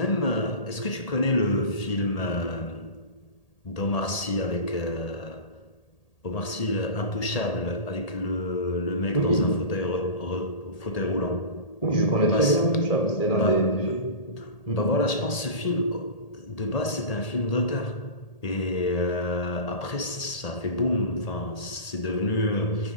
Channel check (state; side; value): late; right; 1.8 ms